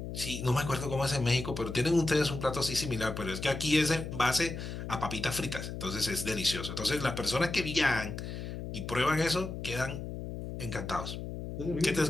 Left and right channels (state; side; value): noise; left; hum, 7 dB below the sound